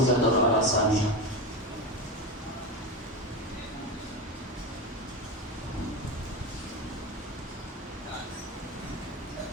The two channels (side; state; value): both; normal; correlation 0.19